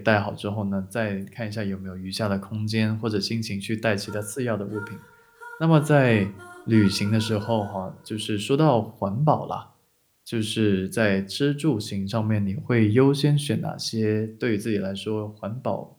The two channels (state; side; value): identical; both; correlation 1.00